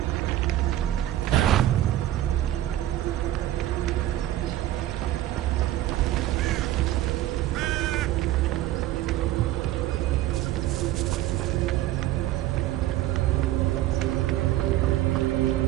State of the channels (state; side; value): quieter; left; 14.1 dB